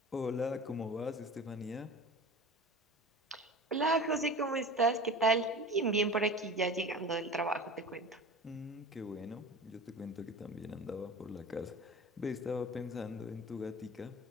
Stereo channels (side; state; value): both; normal; correlation 0.36